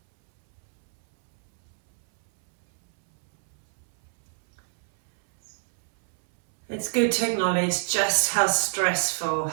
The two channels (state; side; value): silent; left; 62 dB below the other